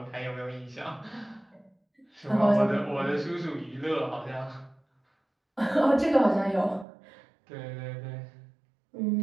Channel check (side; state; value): left; drops out; at 6.9 s